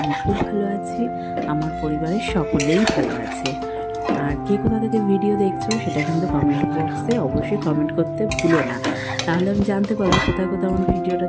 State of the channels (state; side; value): identical; both; correlation 1.00